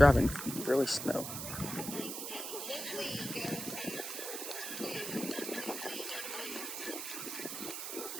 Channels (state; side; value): noise; right; hiss, 5 dB below the sound